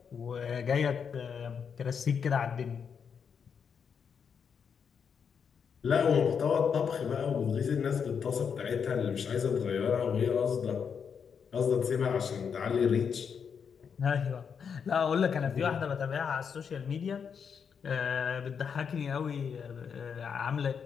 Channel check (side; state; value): right; quieter; 6.7 dB